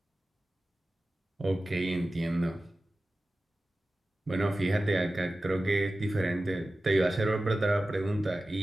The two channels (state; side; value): normal; both; correlation 0.95